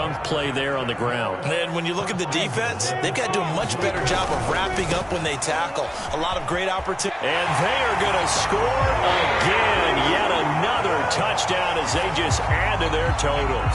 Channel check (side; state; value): both; identical; correlation 1.00